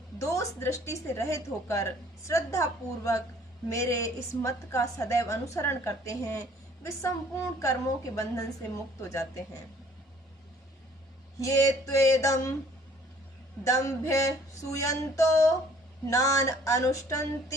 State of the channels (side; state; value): both; normal; correlation 0.57